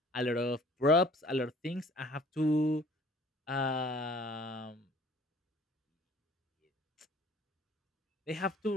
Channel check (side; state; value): both; normal; correlation 0.52